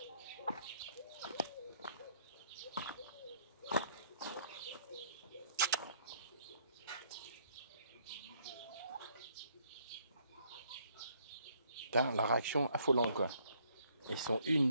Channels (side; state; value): both; inverted; correlation -0.66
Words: Putain, la réaction affolante, quoi. Ils sont 1,